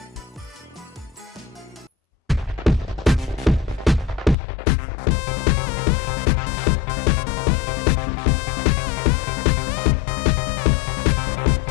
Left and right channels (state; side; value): drops out; right; at 4.4 s